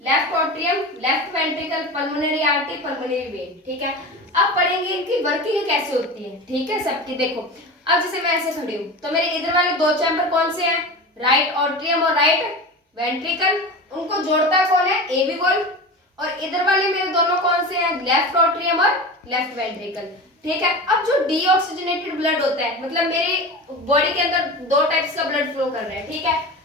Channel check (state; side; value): normal; both; correlation 0.29